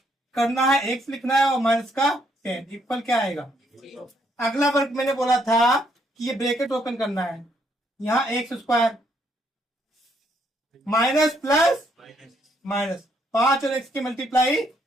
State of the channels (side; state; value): both; normal; correlation 0.71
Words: करना है, एक्स लिखना है और माइनस का 10 इक्वल क्या आएगा। अगला वर्ग मैंने बोला था कि ये ब्रैकेट ओपन करना है, यहाँ x square minus plus minus, 5 और एक्स की मल्टीप्लाई